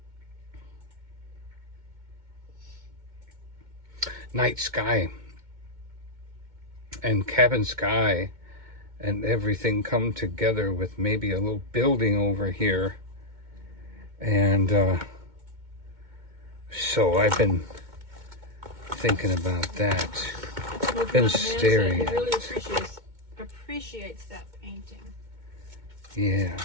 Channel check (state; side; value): late; left; 2.2 ms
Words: night sky and cabin sky and everything come together with maybe a little building over here. And so I've been thinking about that. Been staring at it. He really appreciates that painting. Yeah.